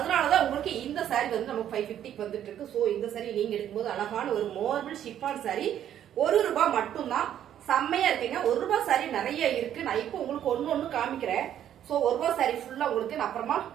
உங்களுக்கு இந்த சாரி வந்து நம்ம 550க்கு வந்துட்டு இருக்கு. சோ இந்த சாரி நீங்க எடுக்கும்போது அழகான ஒரு மார்பிள் ஷிஃபான் சாரி 1 ரூபாய் மட்டும்தான். செம்மையா இருக்குங்க. 1 ரூபாய் சாரி நிறைய இருக்கு. நான் இப்போ உங்களுக்கு ஒன்னு காமிக்கிறேன். சோ 1 ரூபாய் சாரி ஃபுல்லா உங்களுக்கு நான் அப்புறமா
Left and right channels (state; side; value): quieter; left; 10.6 dB